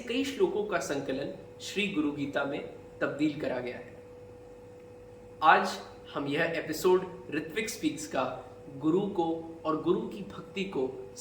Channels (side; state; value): both; identical; correlation 1.00